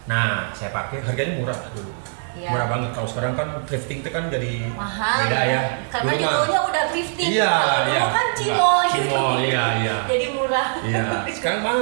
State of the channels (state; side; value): silent; left; digital silence